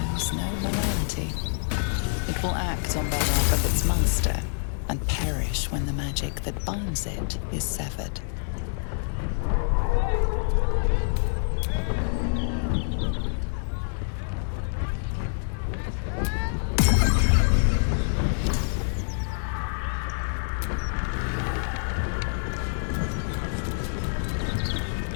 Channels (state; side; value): silent; right; digital silence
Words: knows no morality. It will act on behalf of its master and perish when the magic that binds it is severed.